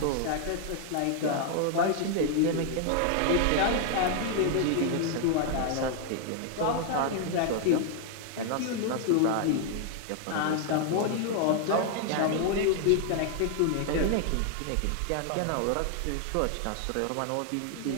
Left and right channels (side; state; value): both; different; correlation 0.00